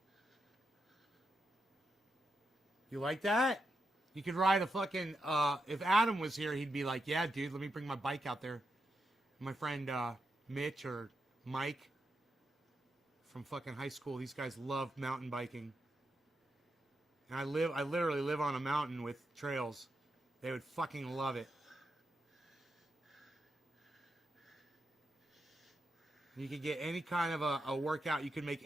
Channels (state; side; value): normal; both; correlation 0.85